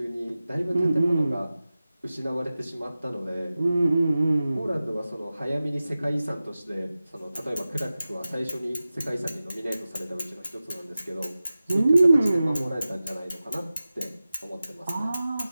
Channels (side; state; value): both; inverted; correlation -0.95